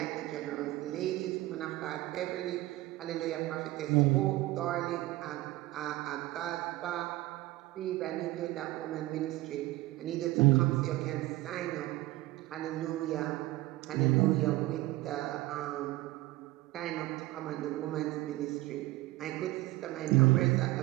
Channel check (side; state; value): left; quieter; 18.1 dB